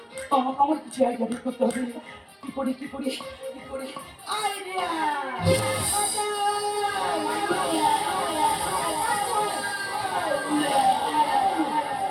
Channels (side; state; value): both; identical; correlation 1.00